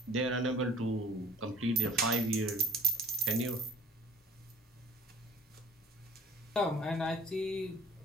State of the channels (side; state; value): both; normal; correlation 0.53